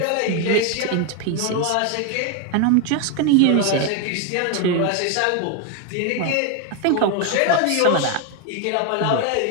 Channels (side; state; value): both; different; correlation 0.01